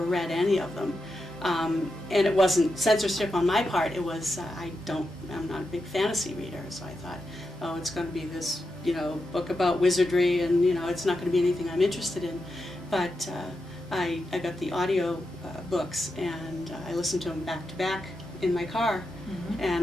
any of them. And it wasn't censorship on my part. It was I'm not a big fantasy reader, so I thought, oh, it's going to be this, you know, book about wizardry, and you know, it's not going to be anything I'm interested in. But I got the audio books, and I listened to them back to back in my car,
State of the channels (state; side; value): normal; both; correlation 0.87